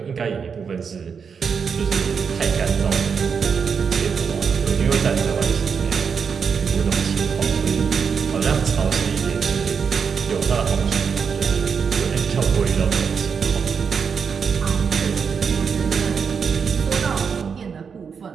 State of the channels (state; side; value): quieter; left; 6.2 dB